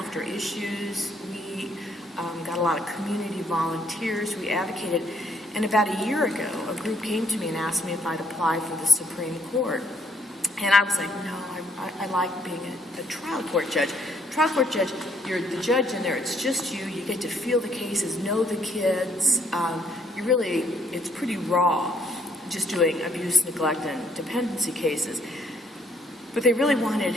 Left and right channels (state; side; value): normal; both; correlation 0.69